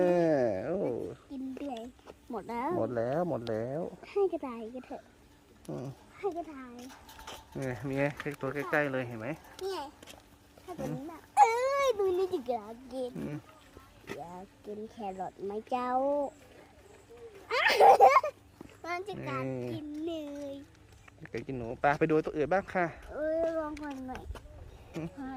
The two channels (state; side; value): identical; both; correlation 1.00